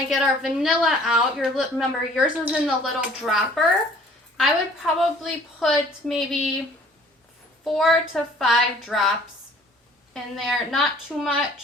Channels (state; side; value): normal; both; correlation 0.53